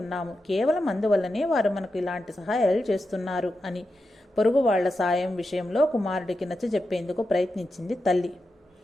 కేవలం అందువల్లనే వారు మనకు ఇలాంటి సహాయాలు చేస్తున్నారు అని పొరుగు వాళ్ల సాయం విషయంలో కుమారుడికి నచ్చజెప్పేందుకు ప్రయత్నించింది తల్లి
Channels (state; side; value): normal; both; correlation 0.89